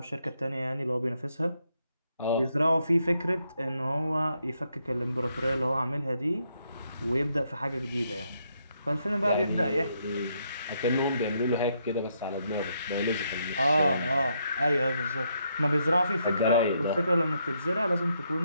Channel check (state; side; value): inverted; both; correlation -0.77